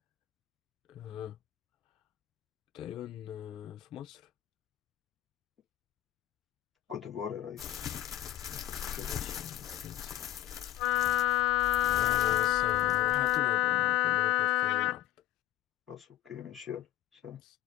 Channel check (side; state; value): right; quieter; 14.6 dB